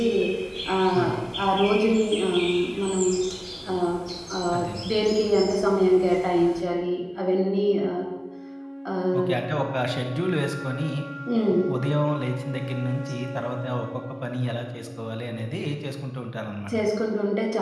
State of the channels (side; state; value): both; identical; correlation 1.00